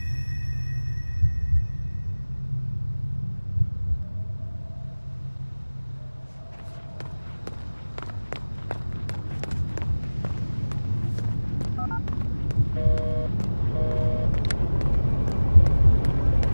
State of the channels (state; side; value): inverted; both; correlation -1.00